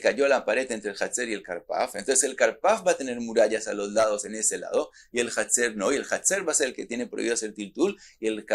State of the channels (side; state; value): both; identical; correlation 1.00